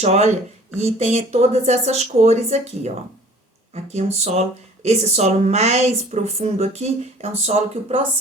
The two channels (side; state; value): both; normal; correlation 0.50